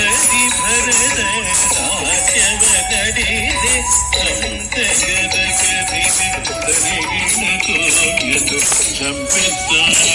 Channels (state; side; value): identical; both; correlation 1.00